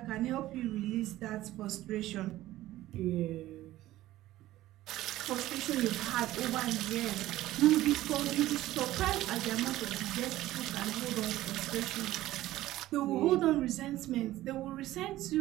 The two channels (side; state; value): left; quieter; 15.4 dB